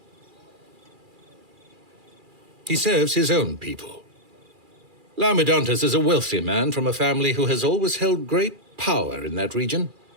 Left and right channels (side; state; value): left; late; 2.4 ms